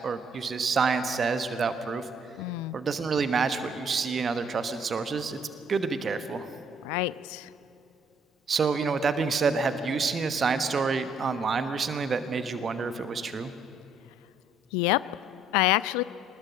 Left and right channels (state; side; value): normal; both; correlation 0.64